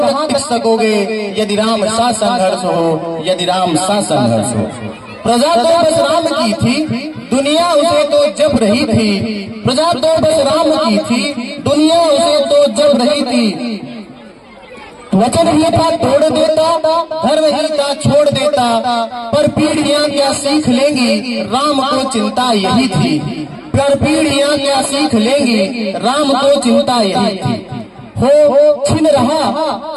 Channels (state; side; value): identical; both; correlation 1.00